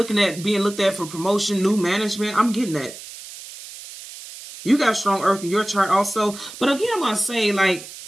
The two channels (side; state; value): right; noise; hiss, 14 dB below the sound